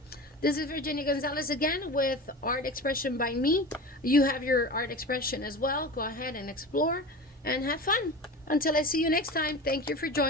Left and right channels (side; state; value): both; normal; correlation 0.32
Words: this is Virginia Gonzalez again with Art Expression by me. You have your art expression as well. Go ahead and explore and have fun. Until I see you next time, thank you for